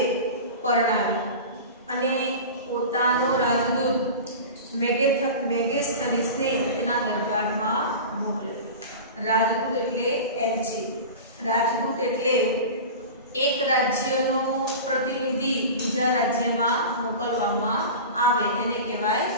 પરણાવી અને પોતાનો રાજદૂત મેગેસ્થનીસને તેના દરબારમાં મોકલ્યો. રાજદૂત એટલે એલચી. રાજદૂત એટલે એક રાજ્યનો પ્રતિનિધિ બીજા રાજ્યમાં મોકલવામાં આવે એને કહેવાય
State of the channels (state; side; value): inverted; both; correlation -0.32